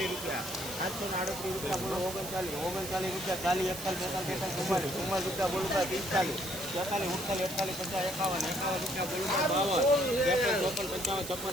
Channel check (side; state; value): right; noise; hiss, 9 dB below the sound